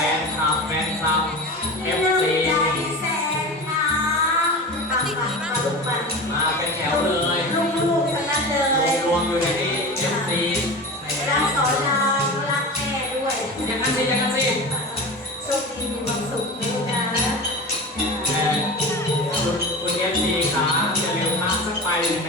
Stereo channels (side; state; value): both; normal; correlation 0.30